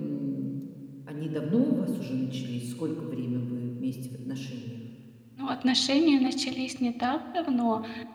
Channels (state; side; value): identical; both; correlation 1.00